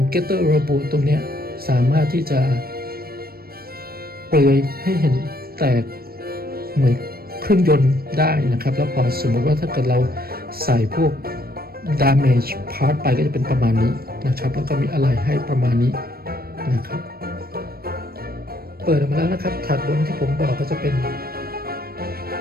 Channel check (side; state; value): left; late; 0.44 ms